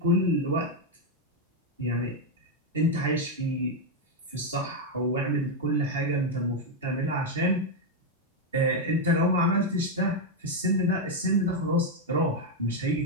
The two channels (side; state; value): both; normal; correlation 0.03